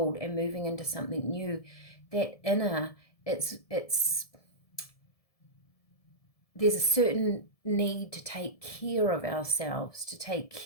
and moving into something new, that inner, it's there's a certain need to take care of ourselves, to take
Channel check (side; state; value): right; late; 1.7 ms